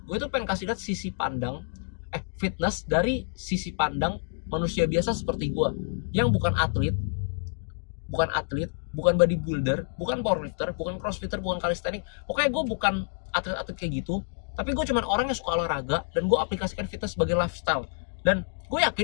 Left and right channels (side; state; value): right; silent; digital silence